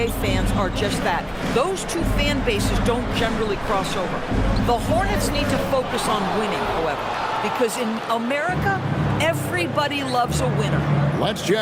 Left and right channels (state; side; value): identical; both; correlation 1.00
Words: fans are just that. Those two fan bases don't generally cross over. The Hornets need to focus on winning, however, because in America, everybody loves a winner. Let's